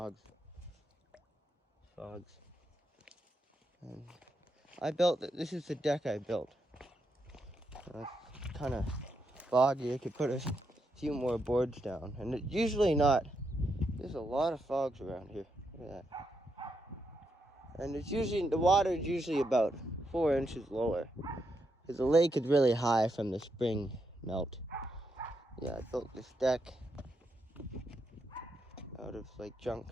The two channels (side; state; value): both; normal; correlation 0.82